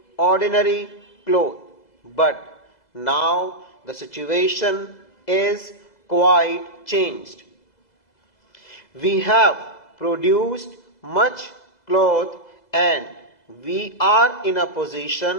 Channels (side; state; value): right; late; 2.0 ms